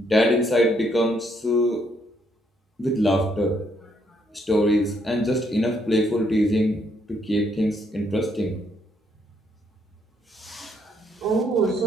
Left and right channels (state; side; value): normal; both; correlation 0.72